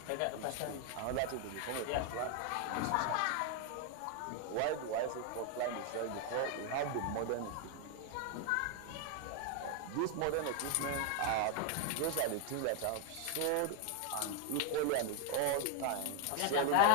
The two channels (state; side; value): different; both; correlation 0.00